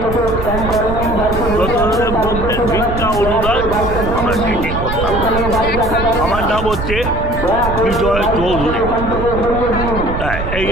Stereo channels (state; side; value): noise; right; rumble, 6 dB below the sound